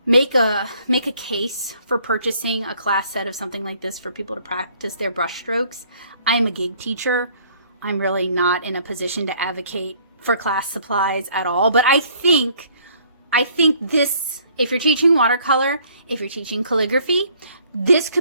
make a case for purchasing a class set of something like this for people to practice their brush strokes. I am a gig teacher. I'm really not in a position to advocate for class supplies at all, but I think this, if you're teaching watercolor, if you're teaching calligraphy, this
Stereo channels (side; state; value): both; inverted; correlation -0.60